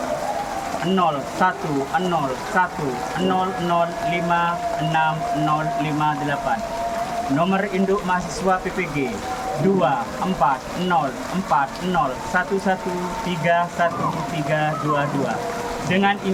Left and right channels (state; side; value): identical; both; correlation 1.00